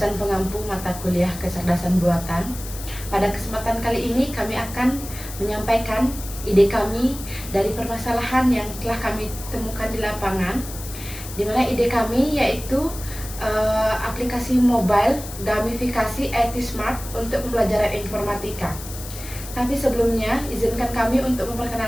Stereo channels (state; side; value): noise; left; hiss, 12 dB below the sound